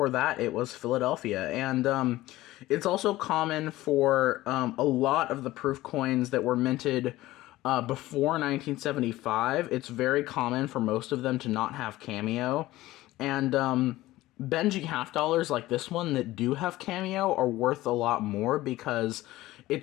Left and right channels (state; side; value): quieter; right; 17.0 dB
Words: that, it was Philadelphia. And it's also common for a lot of the proof coins that were minted before 1975, it's very common for most of them to not have cameo. And Benji half dollars like this one that do have cameo are worth a lot more because